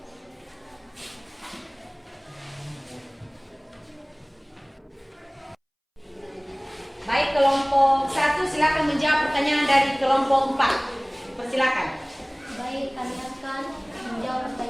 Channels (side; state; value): both; identical; correlation 1.00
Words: Baik, kelompok 1 silakan menjawab pertanyaan dari kelompok 4. Dipersilakan. Baik, kami akan menjawab